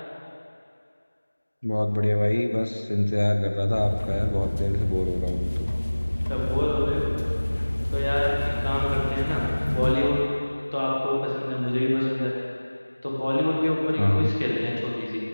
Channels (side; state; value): both; inverted; correlation -1.00